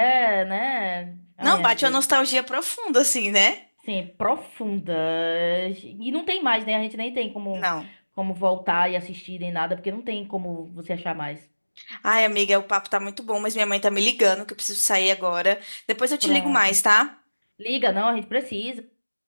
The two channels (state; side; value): inverted; both; correlation -1.00